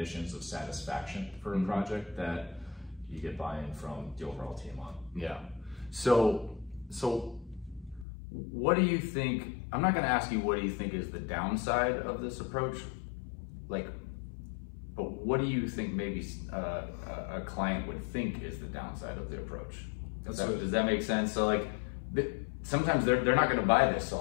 of satisfaction for a project that you get buy-in from the overall team on. Yeah. So what do you think, I'm not going to ask you what do you think is the downside of this approach, but what do you think maybe a client would think is the downside of the approach? Does that make sense? So sometimes they're not going to buy this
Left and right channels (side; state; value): right; drops out; at 8.1 s